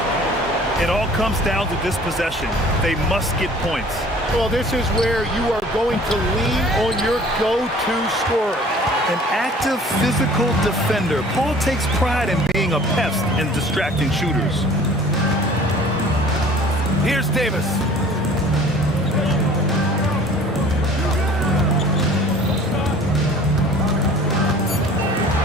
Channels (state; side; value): normal; both; correlation 0.49